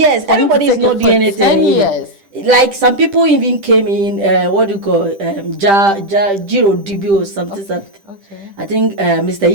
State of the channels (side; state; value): left; late; 10 ms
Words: everybody is not doing anything. 10 years. Like some people even came in, what do you call, Jiro DB or something. Okay. I think Mr.